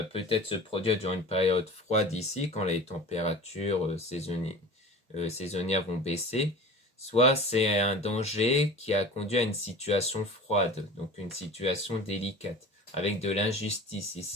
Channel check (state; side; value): normal; both; correlation 0.38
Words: peut-être se produire durant une période froide ici, quand les températures saisonnières vont baisser. Soit c'est un danger qui a conduit à une situation froide, donc une situation délicate, avec de l'injustice